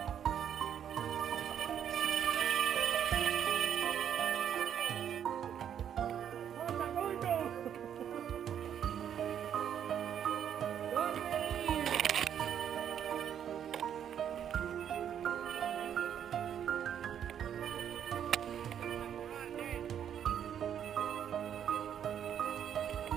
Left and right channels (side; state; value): left; quieter; 9.1 dB